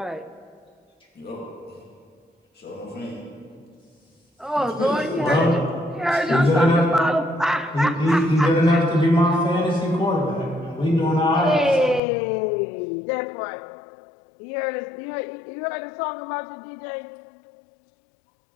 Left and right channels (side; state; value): right; drops out; at 12.0 s